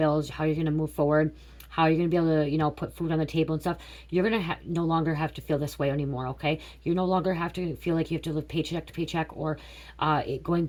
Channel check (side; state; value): both; identical; correlation 1.00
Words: how you're going to move forward, how you're going to be able to, you know, put food on the table and stuff. You're going to no longer have to feel this way anymore, okay? You no longer have to feel like you have to live paycheck to paycheck or going